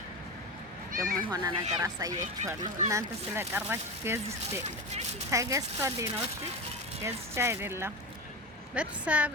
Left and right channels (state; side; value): normal; both; correlation 0.22